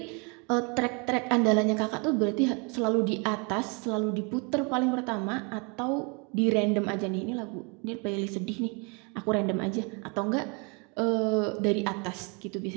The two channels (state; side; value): quieter; left; 32.6 dB